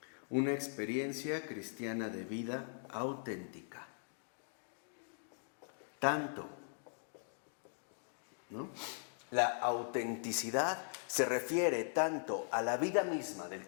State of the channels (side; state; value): right; silent; digital silence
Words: Una experiencia cristiana de vida auténtica. Tanto, ¿no? La autenticidad se refiere tanto a la vida misma del